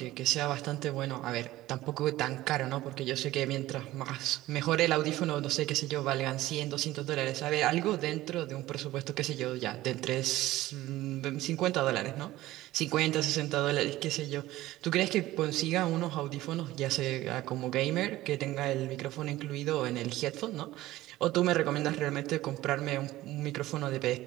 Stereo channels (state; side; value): quieter; left; 16.4 dB